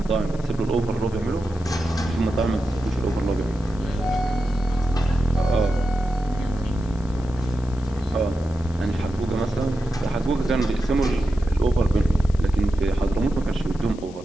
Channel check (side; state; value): left; noise; hiss, 23 dB below the sound